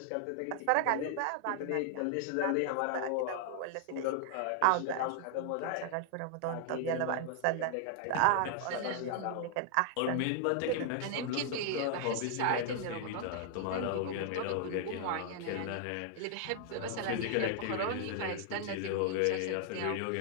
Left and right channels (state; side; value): different; both; correlation 0.00